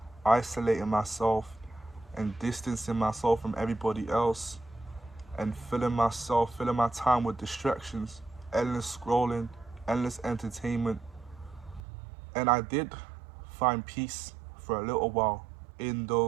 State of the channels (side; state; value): left; drops out; at 11.8 s